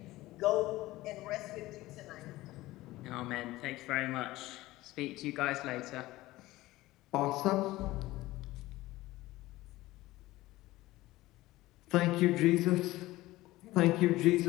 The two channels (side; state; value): right; quieter; 17.8 dB